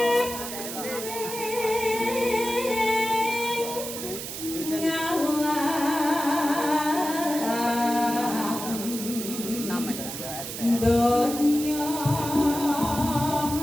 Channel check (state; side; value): noise; right; hiss, 7 dB below the sound